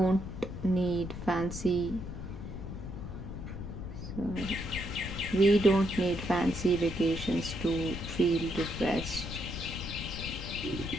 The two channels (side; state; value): left; noise; rumble, 8 dB below the sound